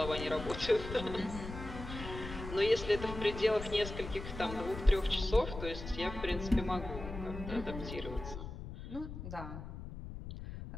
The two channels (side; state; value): left; noise; rumble, 9 dB below the sound